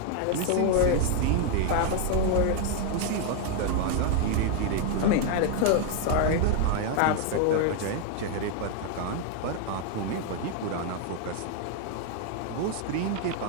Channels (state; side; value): different; both; correlation 0.00